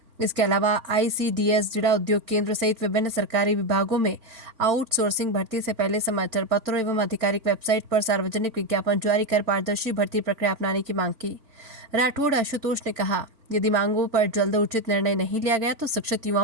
इसके अलावा ICDS जिला उद्योग केंद्र सहित विभिन्न सरकारी विभागों में आउटसोर्सिंग भर्ती से पहले समाचार पत्रों एवं आधिकारिक वेबसाइट पर सार्वजनिक विज्ञापन जारी कर पारदर्शी भर्ती प्रक्रिया अपनाने की मांग की। राठौड़ आशुतोष ने कहा, यदि मांगों पर जल्द उचित निर्णय नहीं लिया गया तो शिक्षित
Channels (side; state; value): left; late; 4.4 ms